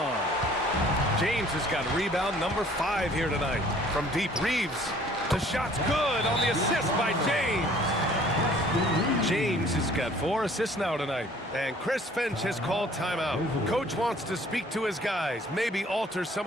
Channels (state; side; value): normal; both; correlation 0.55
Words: James has got rebound number 5 here tonight. From deep, Reeves. The shot's good on the assist by James. James has got 4 assists now tonight. And Chris Finch has called timeout. Coach wants to speak to his guys, maybe alter some